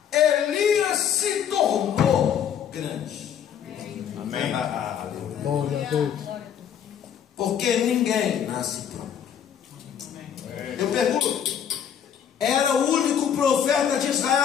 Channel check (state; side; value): quieter; right; 8.7 dB